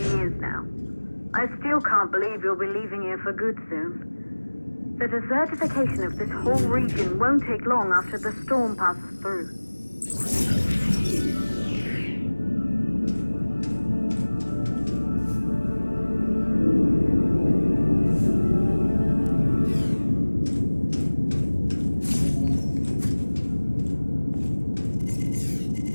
years now. I still can't believe you'll be leaving here for good soon. The desertification of this whole region won't take long after the storm passes through.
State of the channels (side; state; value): both; inverted; correlation -1.00